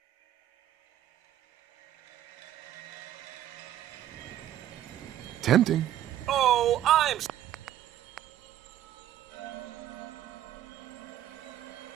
Tempting. Oh, I'm...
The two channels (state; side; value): quieter; left; 12.2 dB